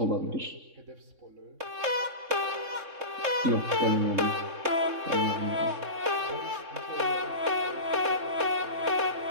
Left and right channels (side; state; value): left; late; 3.6 ms